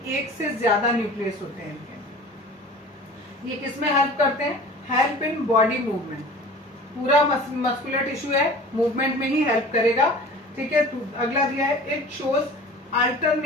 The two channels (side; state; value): both; normal; correlation 0.42